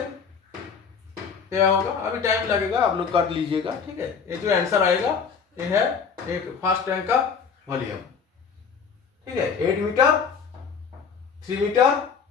क्या होगा? अभी टाइम लगेगा, आप लोग कर लीजिएगा, ठीक है। ये जो आंसर आएगा ये है एक फर्स्ट टैंक का वॉल्यूम, ठीक है। 8 मीटर, 3 मीटर,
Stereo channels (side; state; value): right; quieter; 6.1 dB